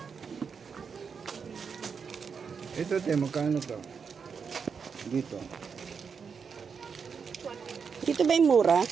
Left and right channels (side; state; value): left; quieter; 6.0 dB